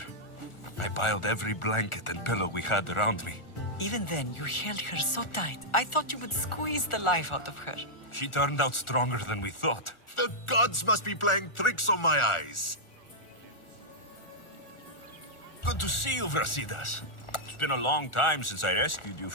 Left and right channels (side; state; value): right; late; 1.4 ms